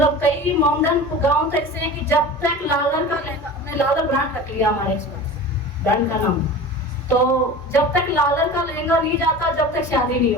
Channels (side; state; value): both; normal; correlation 0.35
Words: कई मॉडर्न गाँव तो ऐसे हैं कि जब तक लालर का लेगा, हमने लालर ब्रांड रख लिया हमारे ब्रांड का नाम, तो जब तक लालर का लहंगा नहीं जाता जब तक शादी नहीं